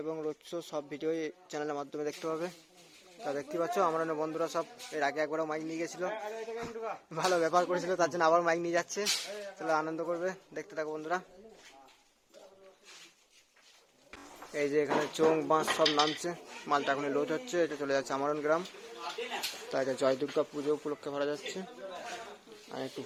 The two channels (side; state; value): both; identical; correlation 1.00